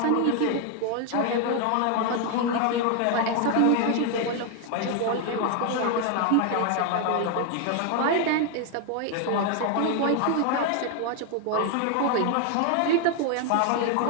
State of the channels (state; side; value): different; both; correlation 0.01